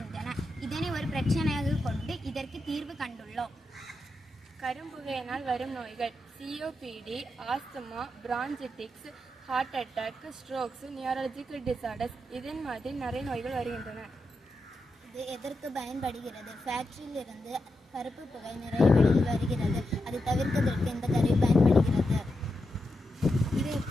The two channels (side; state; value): both; normal; correlation 0.87